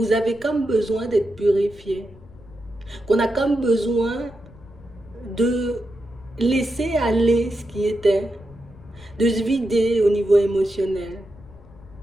avez comme besoin d'être purifié, qu'on a comme besoin de laisser aller ce qui était, de se vider au niveau émotionnel,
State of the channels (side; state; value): left; noise; rumble, 22 dB below the sound